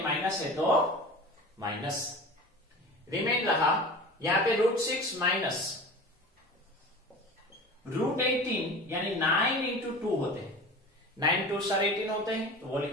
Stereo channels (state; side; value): normal; both; correlation 0.36